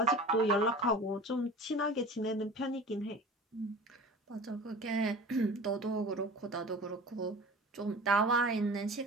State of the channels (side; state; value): both; normal; correlation 0.38